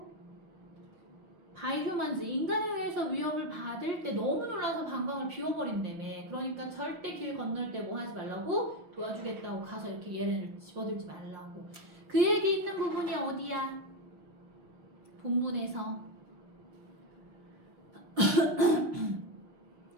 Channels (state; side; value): late; left; 5.6 ms